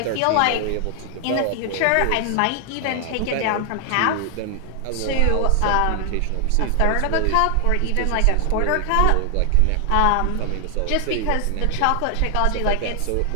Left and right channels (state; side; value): different; both; correlation 0.00